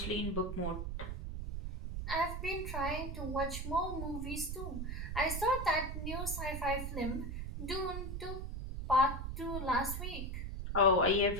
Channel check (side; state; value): right; noise; rumble, 4 dB below the sound